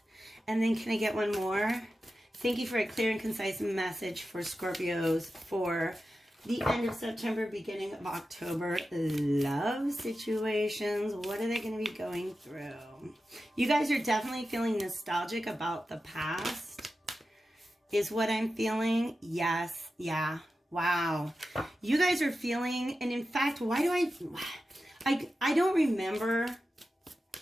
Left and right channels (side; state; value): both; normal; correlation 0.92